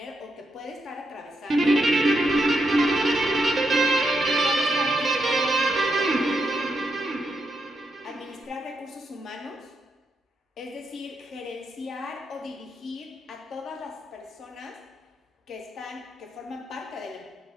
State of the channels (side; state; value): both; normal; correlation 0.82